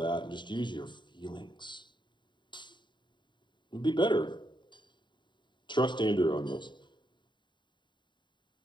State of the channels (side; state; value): right; late; 0.23 ms